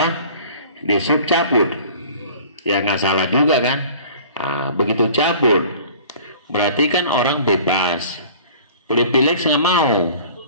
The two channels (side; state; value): both; inverted; correlation -0.46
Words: Dishub cabut. Ya nggak salah juga kan? Nah, begitu cabut, berarti kan orang bebas. Pilih-pilih nggak mau,